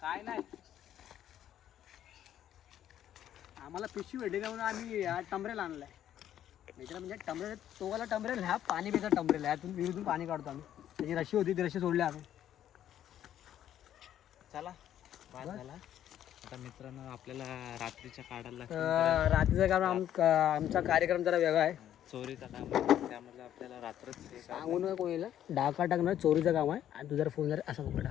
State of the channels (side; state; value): right; quieter; 11.0 dB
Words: काय नाही. आम्हाला पिशवी भेटली का म्हणून आम्ही टमरेल आणलाय. मित्र म्हणजे टमरेल, तोगाला टमरेल, ह्या पाणी पिता टमरेल. ह्यातून विहिरीतून पाणी काढतो आम्ही. त्याची रशी होती, ती रशी सोडली आम्ही. चला बाद झाला. आता मित्रांनो आपल्याला रात्रीच्या काढायला रात्रीचा काम आमचा कार्यक्रम जरा वेगळा आहे. चोरीचा काम, त्यामुळे आपल्याला रात्रच सांगू नका कोणाला. डाका टाकणार चोरीचं काम आहे. आणि तू जर फोन जर असा पकडा